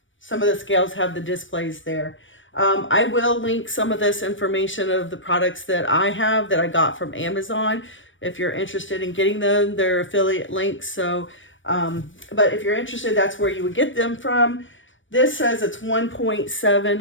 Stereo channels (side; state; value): right; late; 0.56 ms